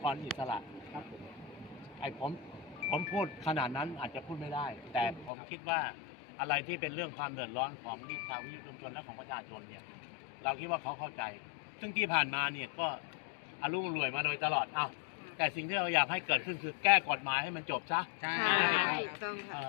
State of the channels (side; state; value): right; drops out; at 5.3 s